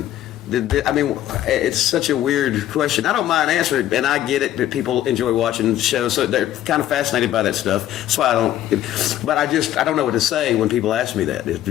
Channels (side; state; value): right; quieter; 12.5 dB